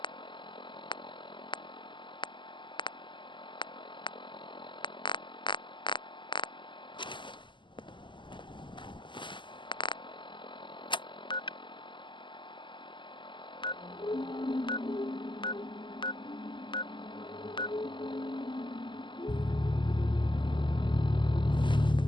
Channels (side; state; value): right; late; 0.24 ms